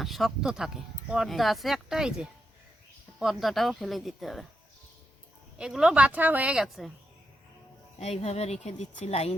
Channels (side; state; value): both; normal; correlation 0.84